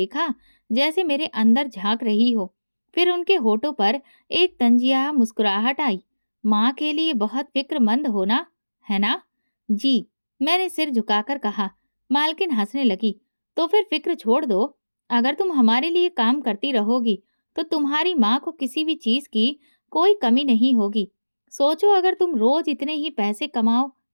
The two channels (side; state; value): both; inverted; correlation -1.00